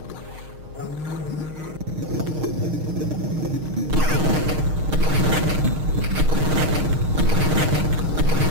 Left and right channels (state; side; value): late; left; 6.5 ms